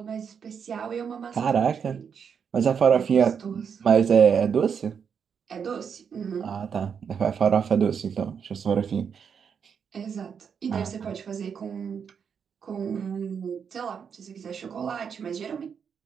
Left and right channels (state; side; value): quieter; left; 6.9 dB